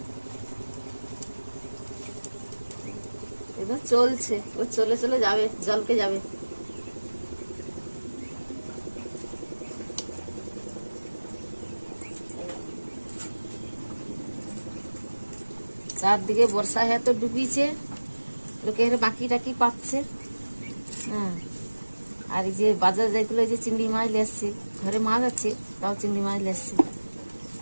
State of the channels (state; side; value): inverted; both; correlation -1.00